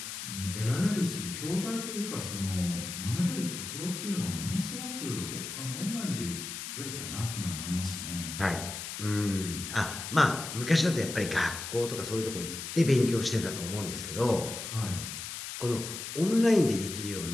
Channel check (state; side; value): noise; left; hiss, 7 dB below the sound